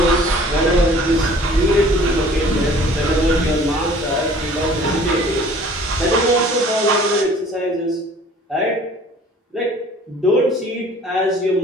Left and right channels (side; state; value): both; normal; correlation 0.51